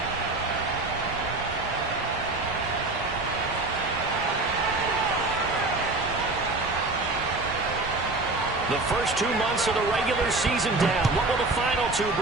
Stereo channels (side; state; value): left; quieter; 3.1 dB